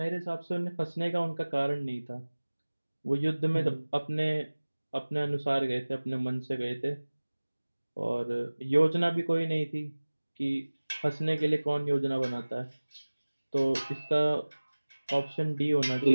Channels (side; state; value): both; inverted; correlation -1.00